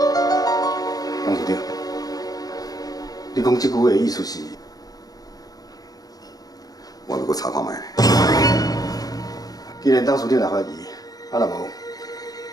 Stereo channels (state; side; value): late; right; 0.18 ms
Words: 张处长，你讲即句话的意思是？我要搁查看卖。既然张处长来怀疑，啊若无？